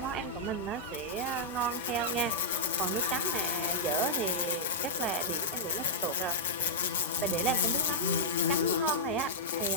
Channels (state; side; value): normal; both; correlation -0.12